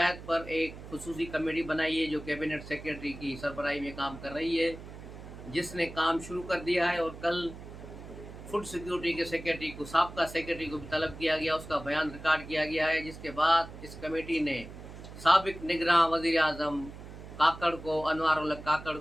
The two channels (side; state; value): right; noise; hum, 14 dB below the sound